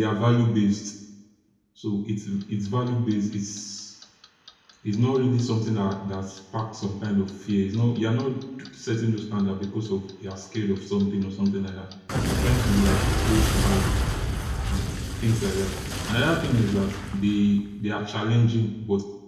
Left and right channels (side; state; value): both; identical; correlation 1.00